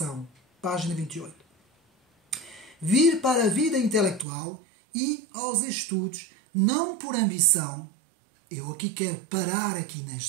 Página 28. Vir para a vida intelectual e aos estudos, não por ambição. Eu aqui quero parar aqui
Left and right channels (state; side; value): drops out; left; at 4.2 s